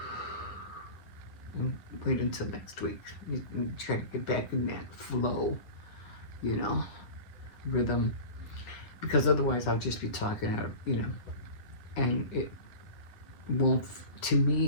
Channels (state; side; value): late; right; 8.9 ms